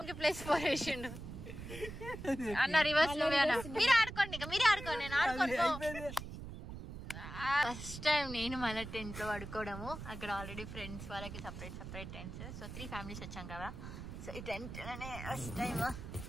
ప్లేస్ 4 వేసిండు అన్న. రివర్స్ మీరు ఆడుకోండి, మీరే ఆడుకోండి, నేను ఆడుకోను. ఫస్ట్ టైం నేను మన టెంట్ లో పడుకోవడము. అక్కడ ఆల్రెడీ ఫ్రెండ్స్ వాళ్ళకి సపరేట్ టెంట్స్. సో 3 ఫ్యామిలీస్ వచ్చాం కదా. సో ఈ టెంట్ లోనే ఫస్ట్ టైం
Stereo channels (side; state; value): right; noise; rumble, 10 dB below the sound